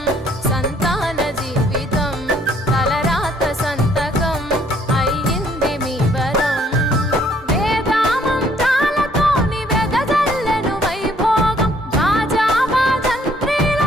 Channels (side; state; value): both; normal; correlation 0.63